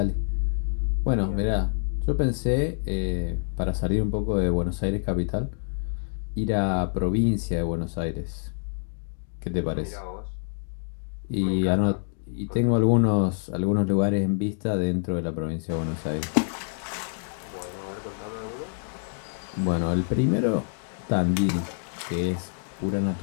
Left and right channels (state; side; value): silent; right; digital silence